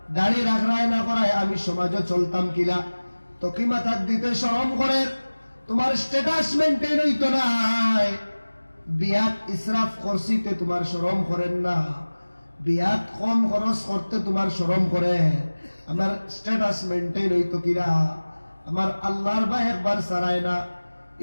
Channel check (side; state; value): both; inverted; correlation -1.00